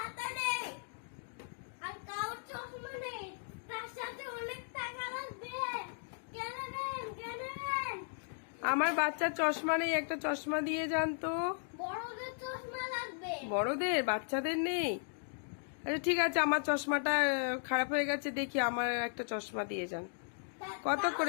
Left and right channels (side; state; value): right; silent; digital silence